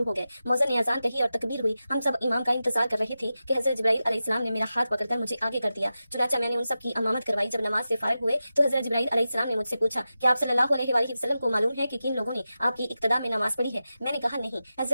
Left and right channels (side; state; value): both; inverted; correlation -0.93